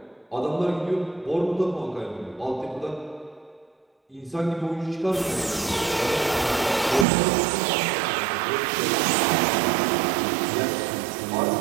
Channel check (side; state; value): left; drops out; at 7.1 s